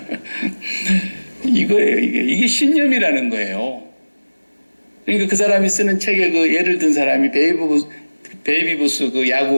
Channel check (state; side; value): inverted; both; correlation -1.00